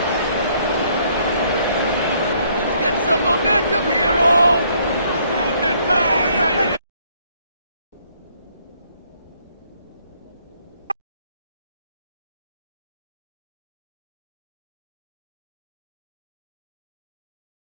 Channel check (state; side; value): inverted; both; correlation -0.66